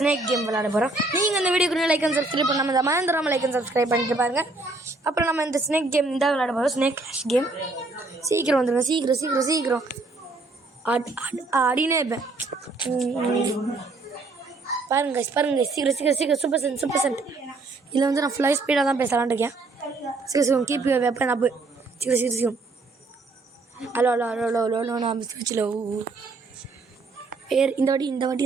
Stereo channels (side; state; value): left; quieter; 3.4 dB